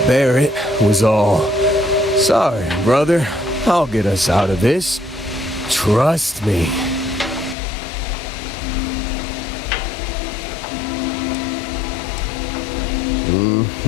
Barrett was all, "Sorry, brother, I'll get us out of this. Trust me."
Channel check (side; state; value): right; drops out; at 7.6 s